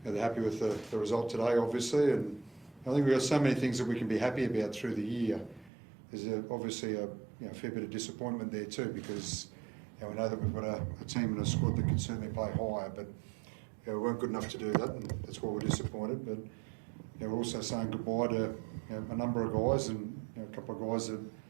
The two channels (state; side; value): drops out; left; at 5.7 s